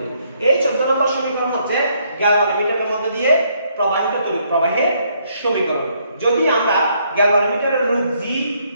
এই 14 নম্বর সমীকরণ হচ্ছে গ্যালভানোমিটারের মধ্যে দিয়ে প্রবাহিত তড়িৎ প্রবাহের সমীকরণ। যদি আমরা গ্যালভানোমিটারের রুট জি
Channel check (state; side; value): inverted; both; correlation -0.70